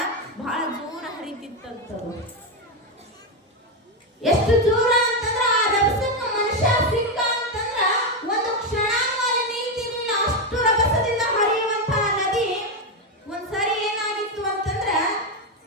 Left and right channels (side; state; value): both; normal; correlation 0.08